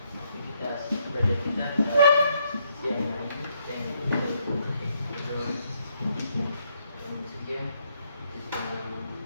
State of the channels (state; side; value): inverted; both; correlation -0.73